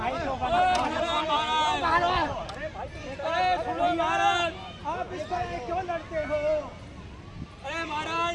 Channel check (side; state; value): both; identical; correlation 1.00